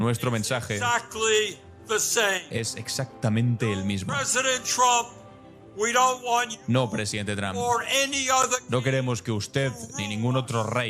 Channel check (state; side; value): identical; both; correlation 1.00